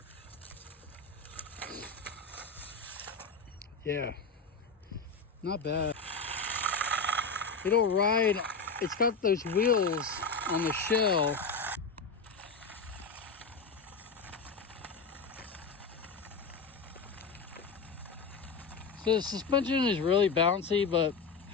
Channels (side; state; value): right; quieter; 4.5 dB